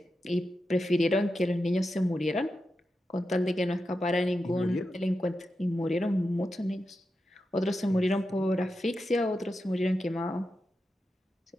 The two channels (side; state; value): both; normal; correlation 0.89